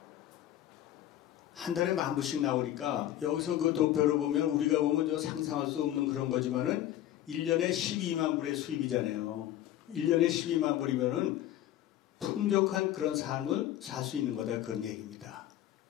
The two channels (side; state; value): right; quieter; 12.6 dB